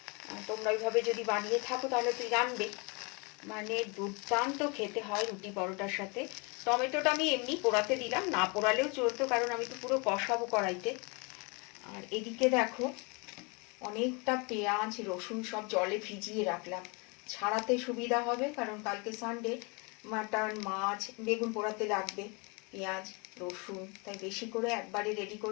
তোমরা ওইভাবে যদি বানিয়ে থাকো তাহলে তুই জানবে, মানে দুর্দান্ত খেতে হয় রুটি পরোটার সাথে। টমেটোটা আমি এমনি পোড়াতে দিলাম, না পোড়ালেও চলতো, কারণ আমি তো পুরো কষাবো কড়াইতে। আর এদিকে দেখো অনেকটা পেঁয়াজ রসুন সব জলে ভিজিয়ে রাখলাম, ছাড়াতে সুবিধা হবে, কারণ কালকে সানডে, মাটন মাছ বেগুন পোড়াতে লাগবে পেঁয়াজ রসুন, তাই বেশি করে একবারে রেডি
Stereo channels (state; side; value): quieter; right; 30.6 dB